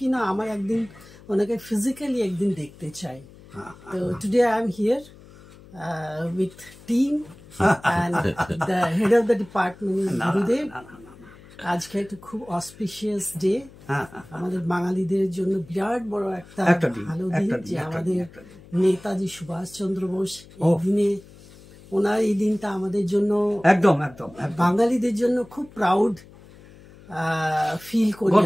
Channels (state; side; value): noise; left; hum, 22 dB below the sound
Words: না আমার একদিন ওনাকে ফিজিক্যালি একদিন দেখতে চাই। তো today I am here with team and the head of the department গুরুদেব। আজকে একটা খুব অসপিশিয়াস ডে আমাদের বাঙালিদের জন্য, বিরাট বড় একটা ভালো দিন যে আমাদের নেতাজি সুভাষচন্দ্র বোস এই দিনে, ওনার এই দিনটা আমাদের জন্য একদম বাঙালিদের জন্য খুব প্রাউড ফিল করি